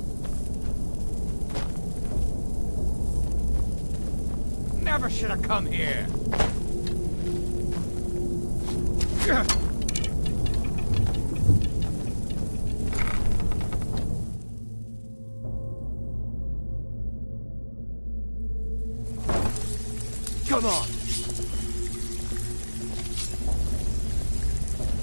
Never should have come here. Come on.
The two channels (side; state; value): both; inverted; correlation -1.00